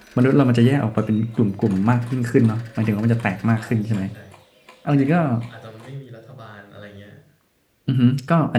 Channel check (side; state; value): both; identical; correlation 1.00